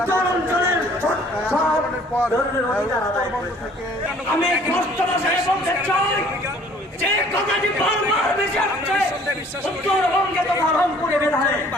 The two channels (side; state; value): both; normal; correlation 0.55